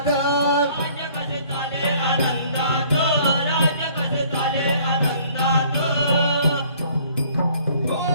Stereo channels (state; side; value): inverted; both; correlation -0.57